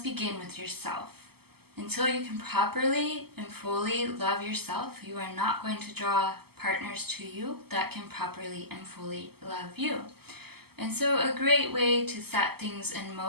begin with yourself. Until you can properly and fully love yourself, you are not going to draw partners to you that can properly and fully love you. And so a great way to set things in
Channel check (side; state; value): left; late; 0.96 ms